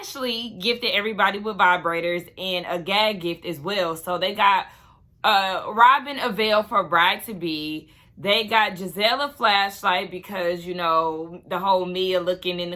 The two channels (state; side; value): identical; both; correlation 1.00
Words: gifted everybody with vibrators and a gag gift as well. So they got Robin a veil for bride to be. They got Giselle a flashlight because, you know, the whole Mia looking in the